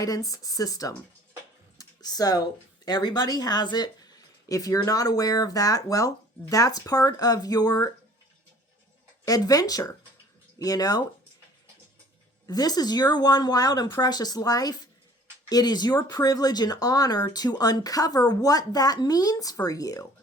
system. So everybody has it. If you're not aware of that, well, that's part of your adventure. This is your one wild and precious life. It is your privilege and honor to uncover what that means for you.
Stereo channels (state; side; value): normal; both; correlation 0.52